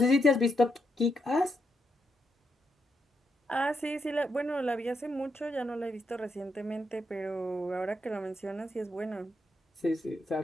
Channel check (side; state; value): both; normal; correlation 0.80